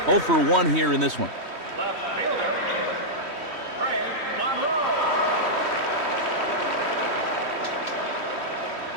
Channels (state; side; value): late; left; 3.1 ms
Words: 0 for 1 here in this one.